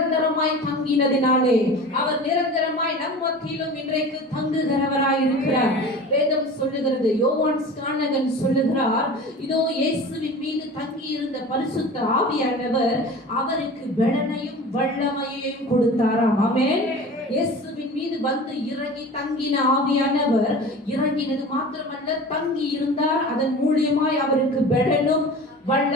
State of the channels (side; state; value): both; normal; correlation 0.37